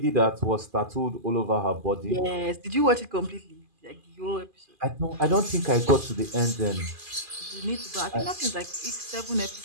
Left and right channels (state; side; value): late; left; 2.4 ms